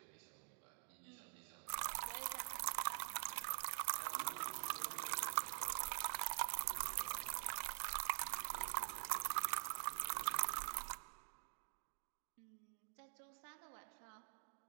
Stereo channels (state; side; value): silent; left; digital silence